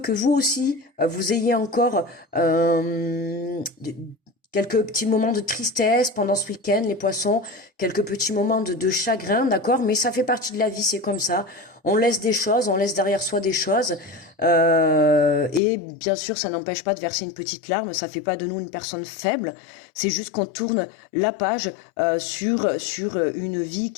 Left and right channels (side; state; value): right; drops out; at 15.6 s